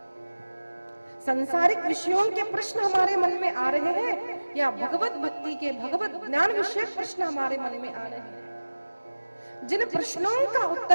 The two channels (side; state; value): both; inverted; correlation -1.00